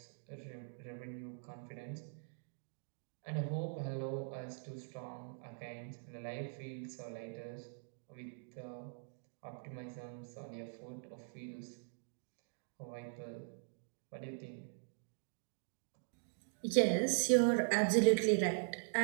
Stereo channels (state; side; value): silent; left; digital silence